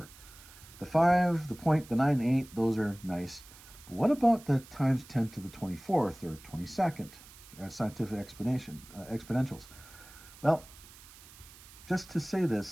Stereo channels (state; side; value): noise; right; hiss, 20 dB below the sound